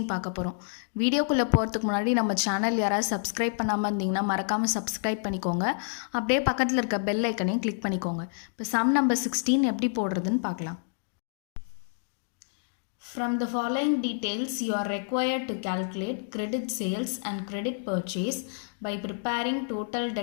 பார்க்க போகிறோம். வீடியோக்குள்ளே போகிறதுக்கு முன்னாடி நம்ம சேனல் யாராவது சப்ஸ்கிரைப் பண்ணாமல் இருந்தீங்கன்னா மறக்காமல் சப்ஸ்கிரைப் பண்ணிக்கோங்க. அப்படியே பக்கத்தில் இருக்க பெல் ஐக்கனையும் கிளிக் பண்ணிக்கோங்க. இப்போ சம் நம்பர் 16 எப்படி போடுறதுன்னு பார்க்கலாம். From the following details, you are required to calculate credit sales and credit purchase by preparing total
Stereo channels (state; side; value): silent; right; digital silence